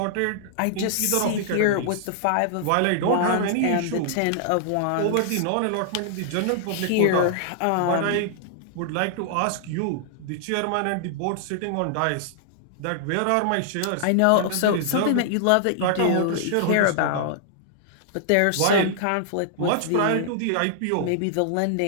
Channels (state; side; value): different; both; correlation -0.01